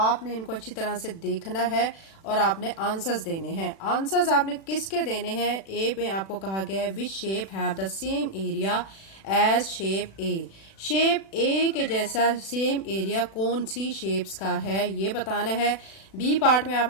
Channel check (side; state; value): right; late; 36 ms